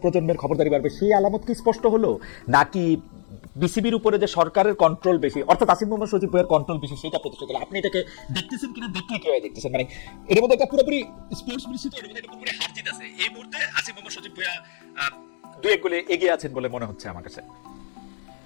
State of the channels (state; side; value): silent; right; 63 dB below the other